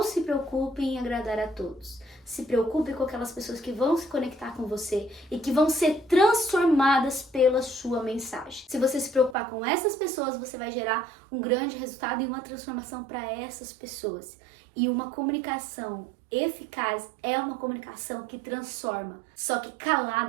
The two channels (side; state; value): left; drops out; at 9.3 s